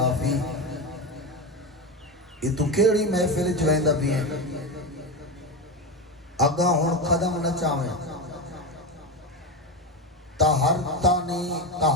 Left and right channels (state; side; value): normal; both; correlation 0.18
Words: یہ تو کیڑی محفل چویندہ بھی ہیں، اگاں ہون قدم نہ چاہیں، طہرتنی